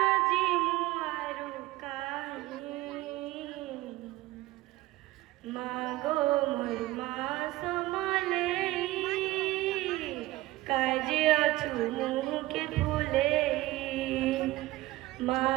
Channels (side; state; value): left; quieter; 18.0 dB